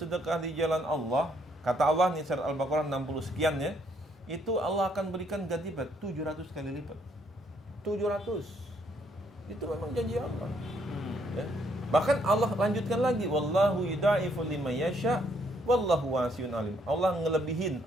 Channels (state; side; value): normal; both; correlation 0.70